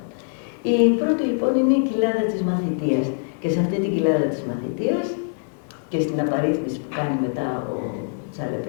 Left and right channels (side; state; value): right; silent; digital silence